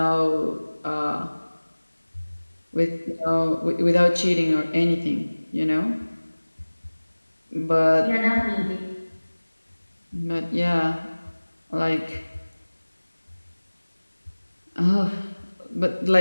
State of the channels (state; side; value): inverted; both; correlation -1.00